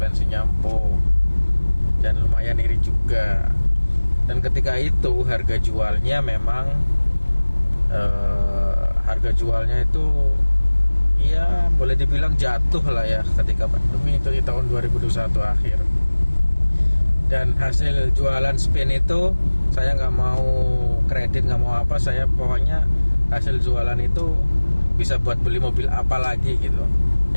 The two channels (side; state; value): both; inverted; correlation -1.00